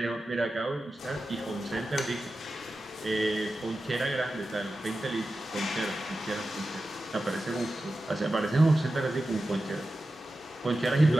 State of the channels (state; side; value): normal; both; correlation 0.93